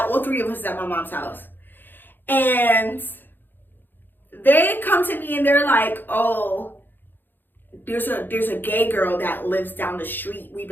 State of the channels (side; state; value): right; late; 0.094 ms